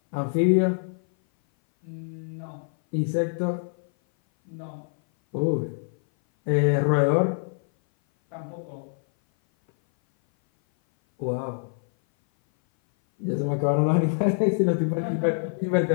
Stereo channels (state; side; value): silent; right; 58 dB below the other